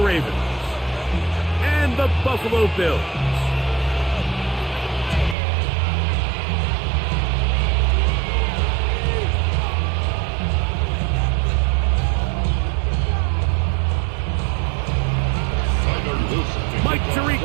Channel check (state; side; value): drops out; left; at 5.4 s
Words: Ravens and the Buffalo Bills. Mike